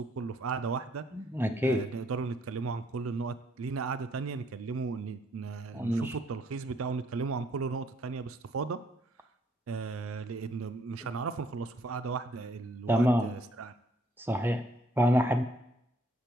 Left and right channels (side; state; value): both; normal; correlation 0.67